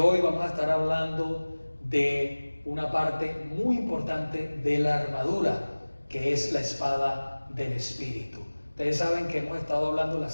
vamos a estar hablando de una parte muy importante de la armadura, que es la espada del Espíritu. Ustedes saben que hemos estado hablando las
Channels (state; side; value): inverted; both; correlation -1.00